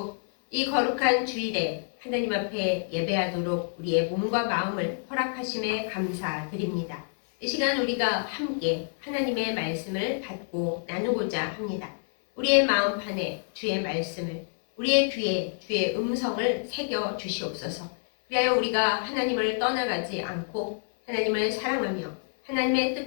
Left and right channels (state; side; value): silent; right; 60 dB below the other